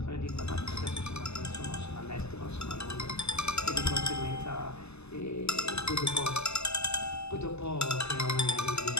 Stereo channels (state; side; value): late; right; 0.80 ms